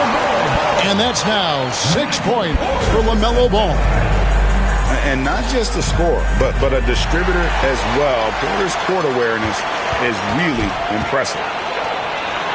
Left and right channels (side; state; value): both; identical; correlation 1.00